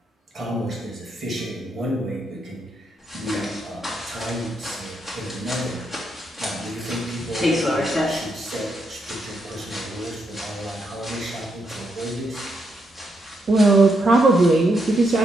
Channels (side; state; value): both; normal; correlation 0.79